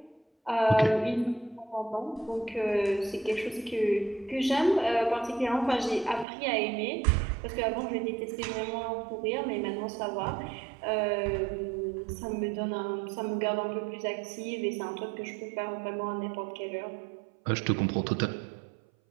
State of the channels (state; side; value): drops out; left; at 6.2 s